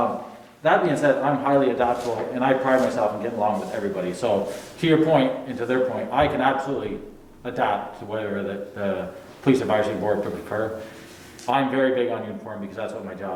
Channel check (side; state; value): both; identical; correlation 1.00